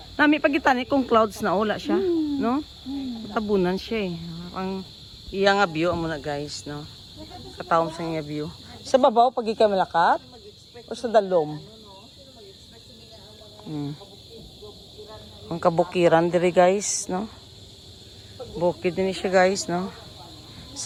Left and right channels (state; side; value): identical; both; correlation 1.00